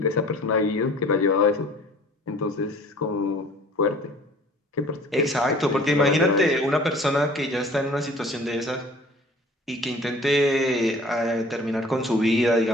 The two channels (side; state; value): both; normal; correlation 0.49